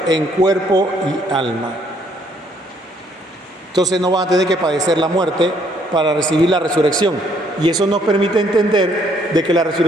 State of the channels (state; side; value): normal; both; correlation 0.66